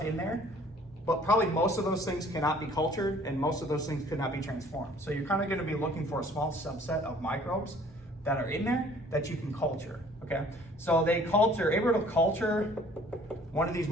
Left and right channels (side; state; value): both; normal; correlation 0.54